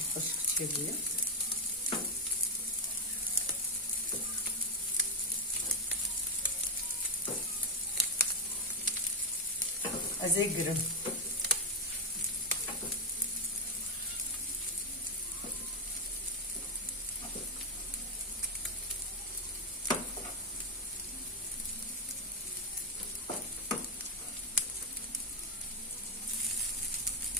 خوش كتير أزيقرم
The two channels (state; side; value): normal; both; correlation 0.04